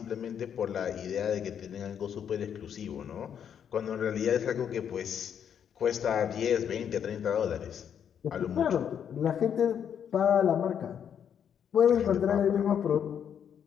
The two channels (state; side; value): quieter; right; 8.4 dB